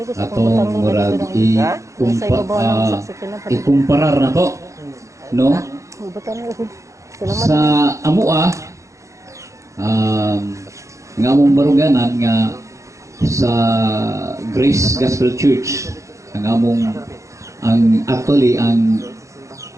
atong murag ikumparar na to no sa amua nga among baruganan nga sa Grace Gospel Church ang actually ang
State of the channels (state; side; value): late; left; 0.15 ms